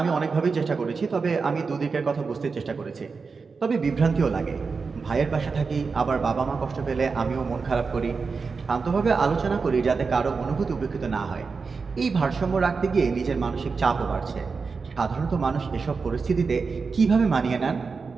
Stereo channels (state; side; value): quieter; left; 4.8 dB